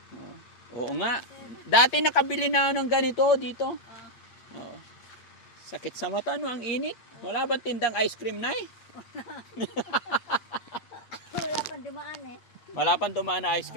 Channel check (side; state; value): right; late; 8.7 ms